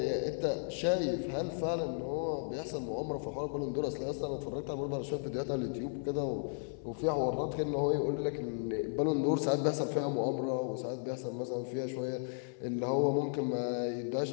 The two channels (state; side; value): silent; right; 55 dB below the other